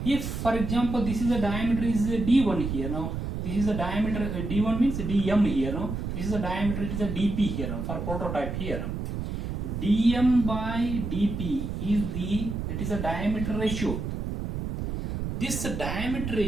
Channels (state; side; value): noise; right; rumble, 4 dB below the sound